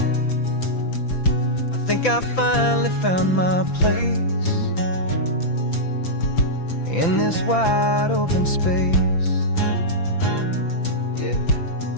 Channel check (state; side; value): late; right; 5.9 ms